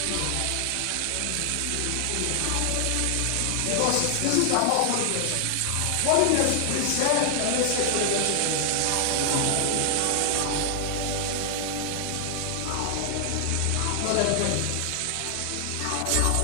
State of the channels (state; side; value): different; both; correlation 0.00